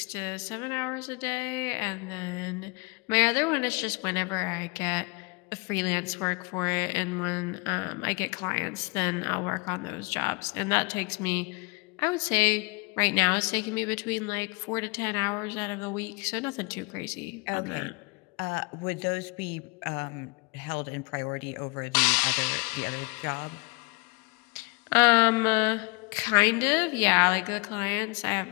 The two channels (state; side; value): quieter; right; 29.2 dB